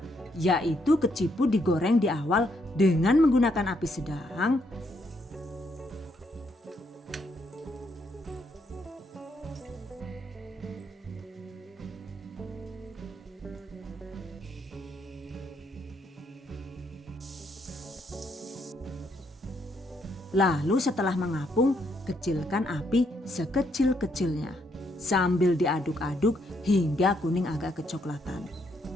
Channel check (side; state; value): both; normal; correlation 0.74